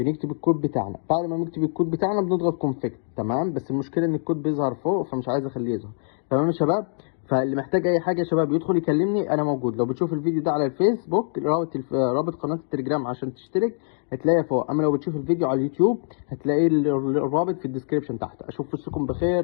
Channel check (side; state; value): right; silent; digital silence